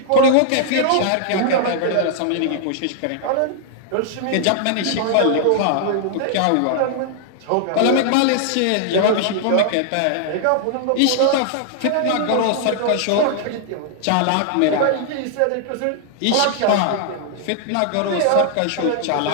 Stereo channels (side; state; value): both; different; correlation -0.01